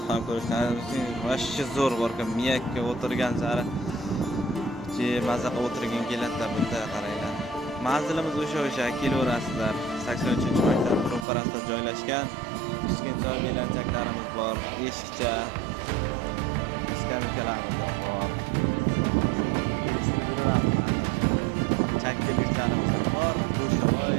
ham ko'rishlaringiz mumkin. Vashchi zo'r borkan, miyakka o'tirgan sari maza qilib o'tirgin keladi bunda qaranglar. Manzilimiz o'sha kelaverasizlar. 83-maktab ro'parasida joylashgan. Kichkintoy belanchaklarimiz bor, eshikcha skameykalarimiz bor. Chakkiliklarimiz bor, go'shovoy,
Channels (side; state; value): left; drops out; at 11.2 s